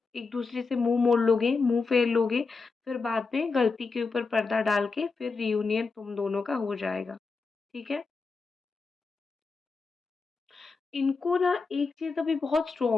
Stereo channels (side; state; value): right; quieter; 4.4 dB